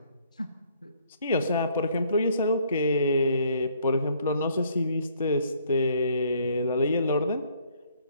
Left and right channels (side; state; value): both; inverted; correlation -0.64